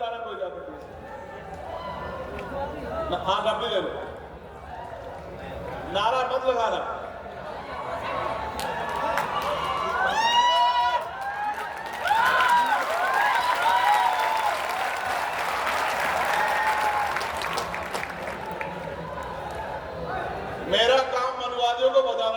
कोई जाकर हाँ डब्बी ले लो, नारा मत लगाना। मेरा काम मनुवादियों को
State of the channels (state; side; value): identical; both; correlation 1.00